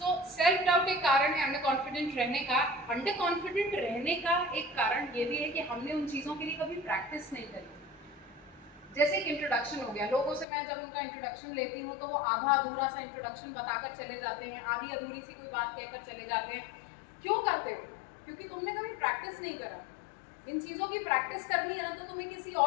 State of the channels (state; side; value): drops out; right; at 10.5 s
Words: self doubt एक कारण है अंडर कॉन्फिडेंट रहने का। अंडर कॉन्फिडेंट रहने का एक कारण ये भी है कि हमने उन चीज़ों के लिए कभी प्रैक्टिस नहीं करी। जैसे एक इंट्रोडक्शन हो गया, लोगों से मैं जब उनका इंट्रोडक्शन लेती हूँ तो वो आधा अधूरा सा इंट्रोडक्शन बताकर चले जाते हैं, आधी अधूरी सी कोई बात कहकर चले जाते हैं। क्यों करते हो? क्योंकि तुमने कभी प्रैक्टिस नहीं करा। इन चीज़ों की प्रैक्टिस करनी है ना, तो तुम्हें किसी